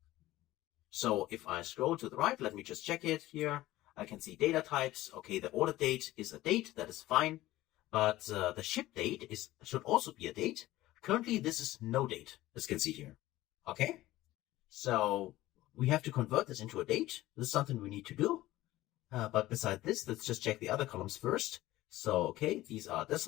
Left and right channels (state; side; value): quieter; right; 16.5 dB